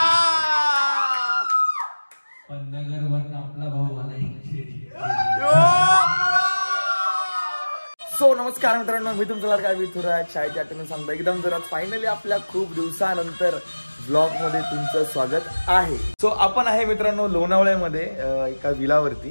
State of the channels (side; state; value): both; inverted; correlation -1.00